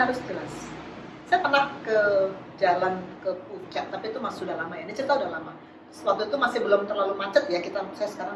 jelas. Saya pernah ke jalan ke puncak, tapi itu masih sudah lama ya. Ini cerita udah lama. Waktu itu masih belum terlalu macet ya. Saya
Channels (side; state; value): both; identical; correlation 1.00